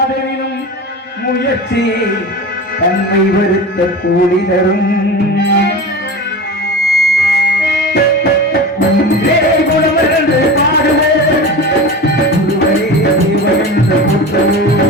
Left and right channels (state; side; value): normal; both; correlation 0.30